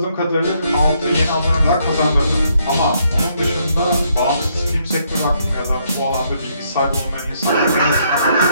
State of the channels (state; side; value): inverted; both; correlation -0.72